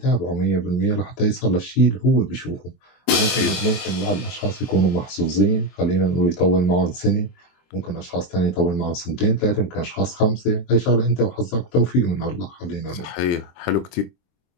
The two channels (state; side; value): late; right; 23 ms